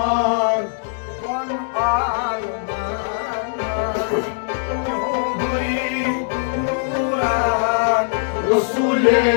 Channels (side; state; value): right; silent; digital silence